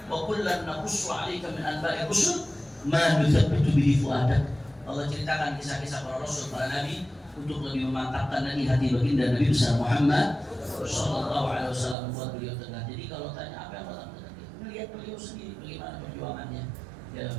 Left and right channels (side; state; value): left; drops out; at 12.0 s